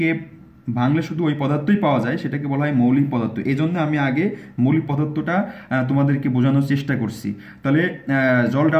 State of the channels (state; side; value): identical; both; correlation 1.00